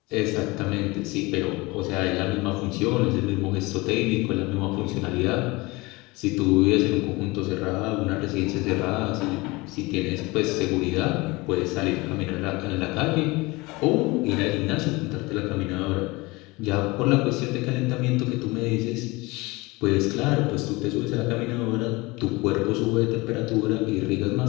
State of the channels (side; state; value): right; quieter; 23.3 dB